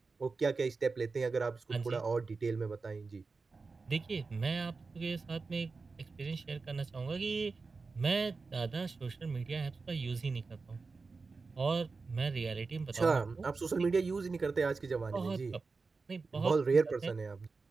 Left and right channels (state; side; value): quieter; left; 4.3 dB